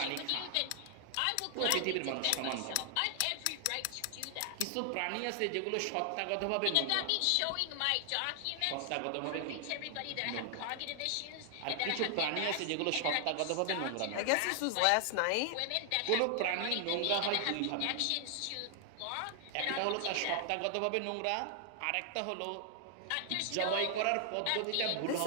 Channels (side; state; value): both; different; correlation 0.00